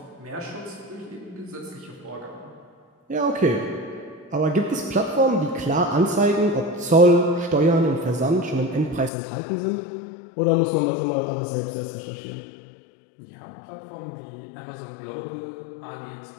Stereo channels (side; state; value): right; drops out; at 9.1 s